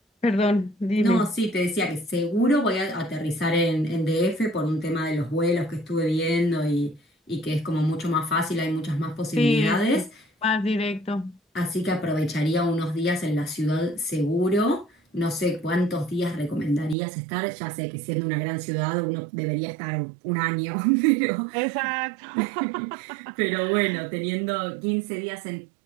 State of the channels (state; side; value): drops out; left; at 16.9 s